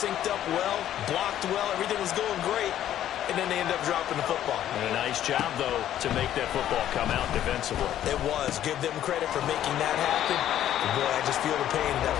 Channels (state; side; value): quieter; right; 11.6 dB